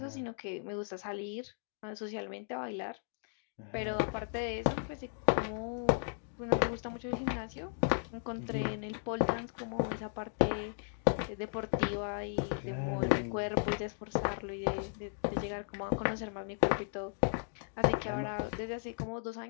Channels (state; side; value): silent; right; digital silence